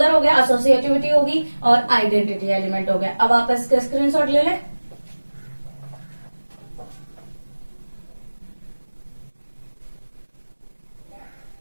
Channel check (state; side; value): inverted; both; correlation -1.00